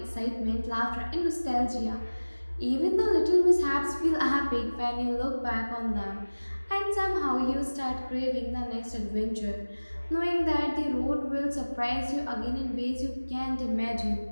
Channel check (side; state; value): both; inverted; correlation -1.00